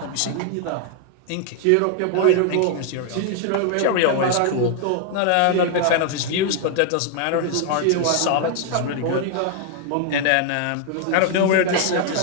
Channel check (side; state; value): both; different; correlation 0.00